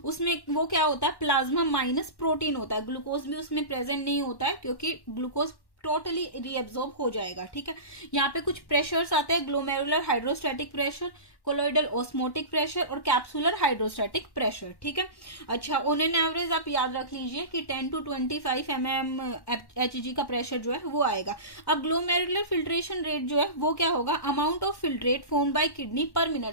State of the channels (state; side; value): late; right; 1.1 ms